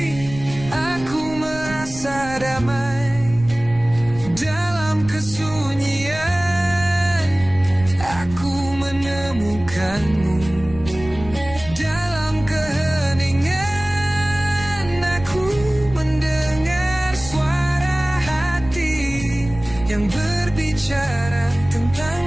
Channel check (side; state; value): right; noise; rumble, 14 dB below the sound